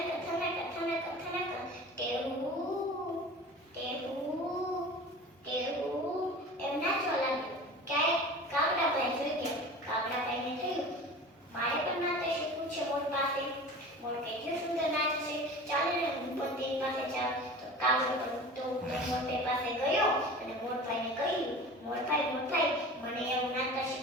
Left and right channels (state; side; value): normal; both; correlation 0.37